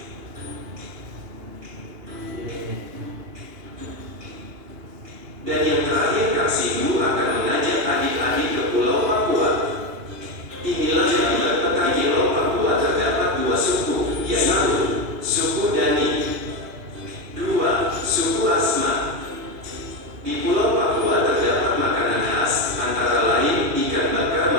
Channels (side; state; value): left; late; 2.8 ms